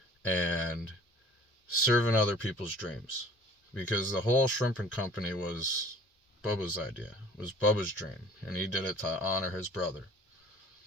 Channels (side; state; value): both; normal; correlation 0.50